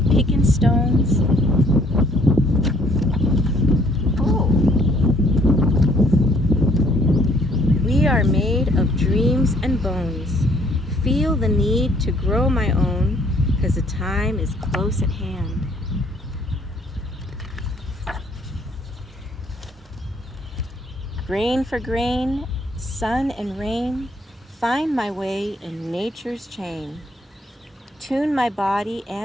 picking stones. Oh. We are made of dreams and bones. Feel the need to grow my own, 'cause the time is close at hand. Grain for grain, sun and rain, find my way in nature's chain. Tune my body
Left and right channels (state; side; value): normal; both; correlation 0.63